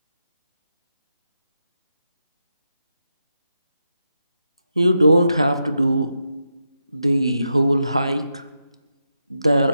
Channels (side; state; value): both; inverted; correlation -0.86